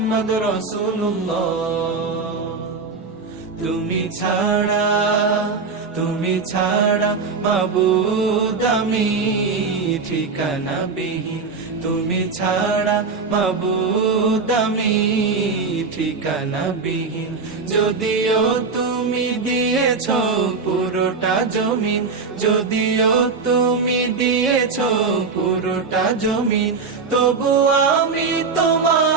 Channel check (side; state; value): left; quieter; 4.7 dB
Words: رسول الله তুমি ছাড়া মাবুদ আমি ঠিকানা বিহীন তুমি ছাড়া মাবুদ আমি ঠিকানা বিহীন যদিও তুমি দিয়েছ পুরোটা জমিন যদিও তুমি দিয়েছ পুরোটা জমিন তবু আমি